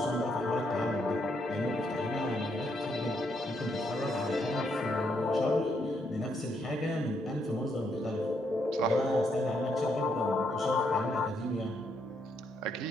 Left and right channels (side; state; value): both; normal; correlation 0.76